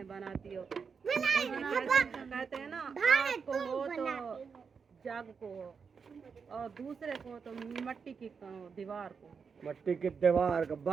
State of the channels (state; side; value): quieter; left; 5.8 dB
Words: बनाती हो। कहते हैं ना, आपको हो तो जग को हो, और दूसरे को तो मिट्टी की दीवार को। मट्टी की दीवार का